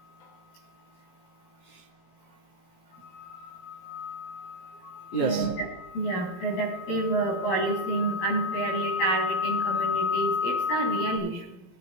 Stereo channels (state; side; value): late; right; 17 ms